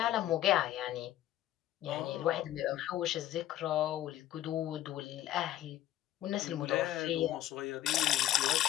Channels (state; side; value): quieter; right; 13.3 dB